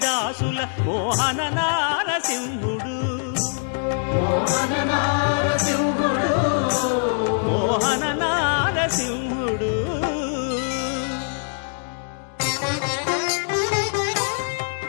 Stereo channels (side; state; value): right; silent; digital silence